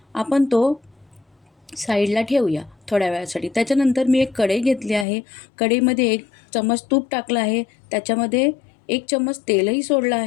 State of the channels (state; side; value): drops out; right; at 5.1 s